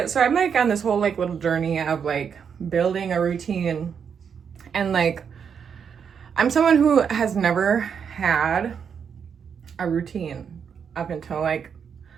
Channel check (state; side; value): quieter; left; 7.0 dB